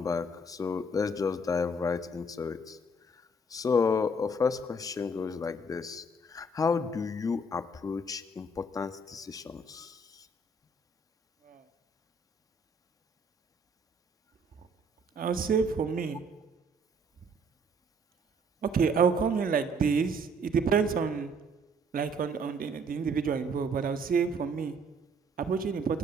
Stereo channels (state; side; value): normal; both; correlation 0.62